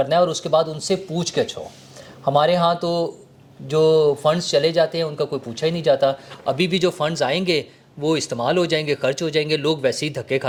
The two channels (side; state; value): both; identical; correlation 1.00